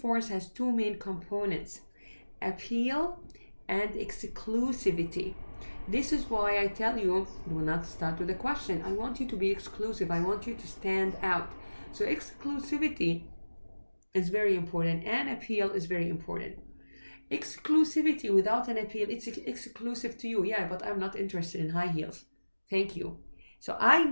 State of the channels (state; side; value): inverted; both; correlation -1.00